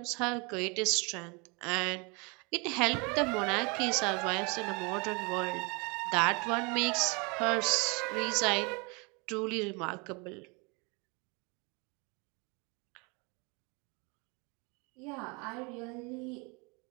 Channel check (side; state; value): left; quieter; 30.2 dB